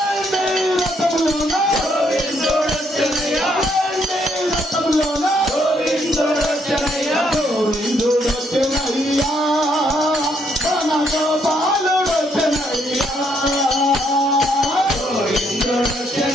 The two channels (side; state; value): both; normal; correlation 0.72